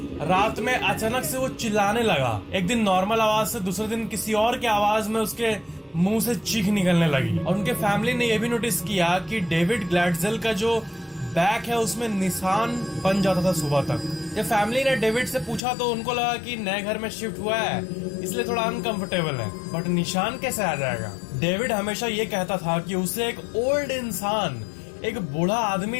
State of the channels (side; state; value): right; drops out; at 15.6 s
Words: रात में अचानक से वो चिल्लाने लगा। एक दिन नॉर्मल आवाज से दूसरे दिन किसी और की आवाज में उसके मुंह से चीख निकलने लगी। और उनके फैमिली ने यह भी नोटिस किया कि डेविड ग्लैडजेल का जो बैक है उसमें निशान बन जाता था सुबह तक। जब फैमिली ने डेविड से पूछा तो उनको लगा कि नए घर में शिफ्ट हुआ है इसलिए थोड़ा अनकंफर्टेबल है, बट निशान कैसे आ जाएगा। डेविड हमेशा ये कहता था कि उसे एक ओल्ड इंसान, एक बूढ़ा